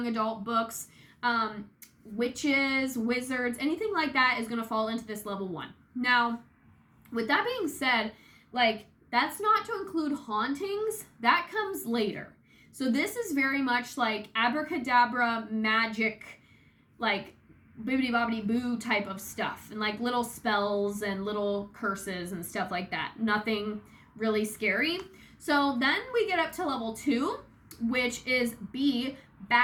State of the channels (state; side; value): identical; both; correlation 1.00